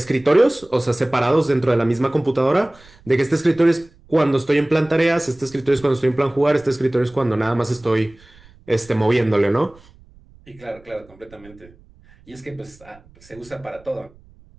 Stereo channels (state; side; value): noise; right; rumble, 26 dB below the sound